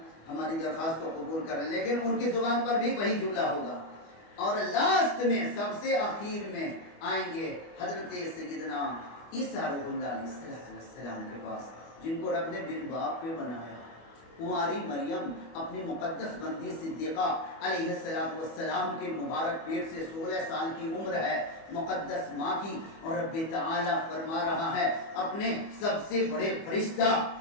ہماری درخواست کو قبول کر رہے ہیں، لیکن ان کی زبان پر بھی وہی جملہ ہوگا۔ اور لاسٹ میں، سب سے آخر میں آئیں گے حضرت سیدنا عیسیٰ روح اللہ علیہ السلام کے پاس، جن کو رب نے بن باپ پہ بنایا۔ کنواری مریم اپنی مقدس بندی صدیقہ علیہ السلام کے مبارک پیٹ سے 16 سال کی عمر ہے، مقدس ماں کی، اور رب تعالیٰ فرما رہا ہے اپنے سب سے بڑے فرشتہ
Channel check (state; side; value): late; right; 25 ms